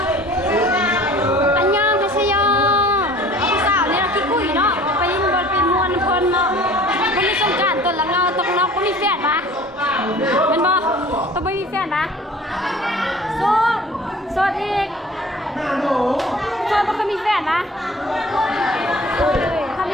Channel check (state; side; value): normal; both; correlation 0.47